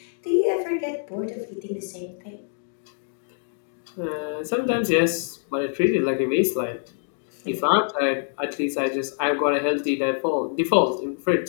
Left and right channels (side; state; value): right; silent; digital silence